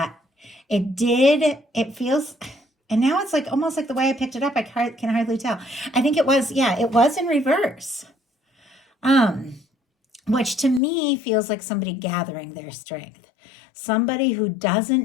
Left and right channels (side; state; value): right; drops out; at 10.8 s